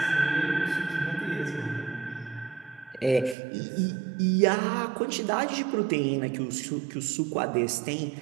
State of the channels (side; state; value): left; drops out; at 3.4 s